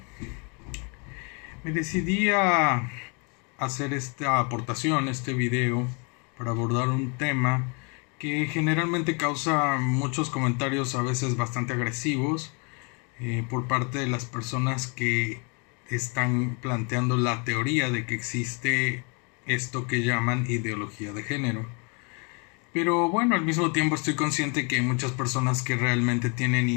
Me decidí a hacer esta aportación, este video, para abordar un tema que generalmente causa muchos comentarios, a veces bastante agresivos, por parte de las personas que están planteando la teoría de que existe esto que llaman ideología de género. Pero bueno, al mismo tiempo estoy consciente que hay muchas personas que realmente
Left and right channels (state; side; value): quieter; right; 34.5 dB